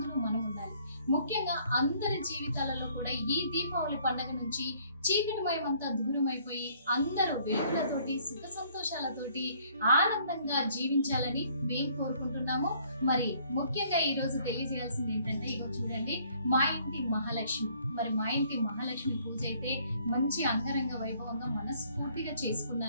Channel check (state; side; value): inverted; both; correlation -0.61